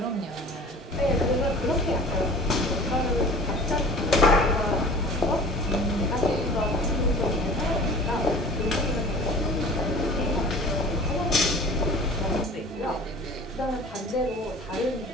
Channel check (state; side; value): normal; both; correlation 0.43